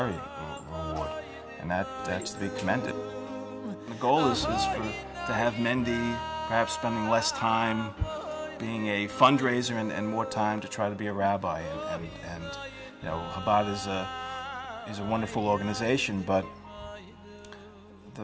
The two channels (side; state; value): both; identical; correlation 1.00